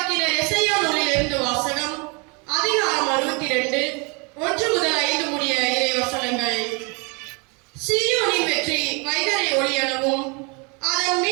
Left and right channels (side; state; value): left; quieter; 31.4 dB